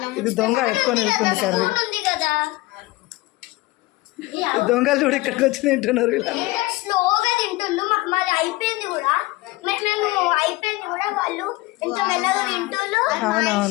ఇది దొంగ ఎత్తుకొని వెళ్తుంది కర్రీ. కదా దొంగలు చూడు ఇక్కడికి వచ్చి తింటున్నారు. స్లోగా తింటుండ్రు. మాది అయిపోయింది కూడా, వాళ్ళు ఎంత మెల్లగా తింటుండ్రు.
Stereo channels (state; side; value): quieter; right; 20.5 dB